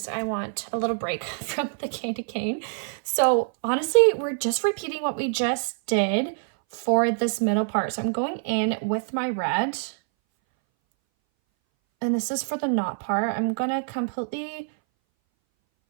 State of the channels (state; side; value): silent; left; 60 dB below the other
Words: I want a little break from the candy cane. So honestly, we're just repeating what we just did for this middle part. So I'm going in with my red, and this is for the knot part. I'm gonna completely